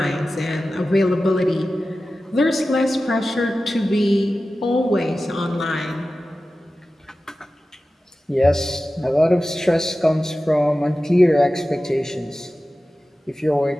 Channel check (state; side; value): normal; both; correlation 0.95